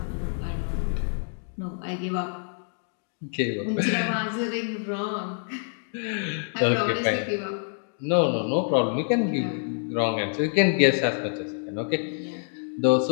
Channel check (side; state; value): right; silent; 58 dB below the other